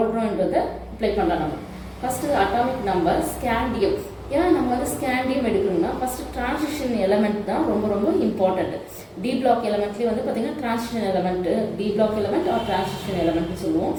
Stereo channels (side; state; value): both; identical; correlation 1.00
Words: அப்ளை பண்ணலாம். நம்ம ஃபஸ்ட்டு அட்டாமிக் நம்பர் ஸ்கேண்டியம். ஏன்னா நம்ம வந்து ஸ்கேண்டியம் எடுக்கணும்னா ஃபர்ஸ்ட் டிரான்சிஷன் எலமெண்ட் தான் ரொம்ப ரொம்ப இம்பார்ட்டன்ட். டி பிளாக் எலமெண்ட்லேயே வந்து பார்த்தீங்கன்னா transition element, D block element are transition எலமெண்ட்னு சொல்லுவோம்.